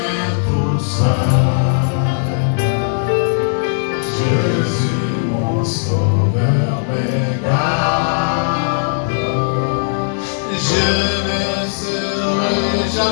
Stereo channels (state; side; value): silent; right; digital silence